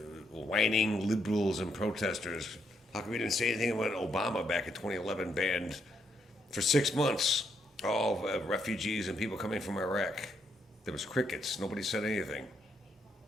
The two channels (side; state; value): both; normal; correlation 0.76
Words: whining liberals and protesters, how come you didn't say anything when Obama back in 2011 banned for 6 months all refugees and people coming from Iraq? There was crickets. Nobody said anything.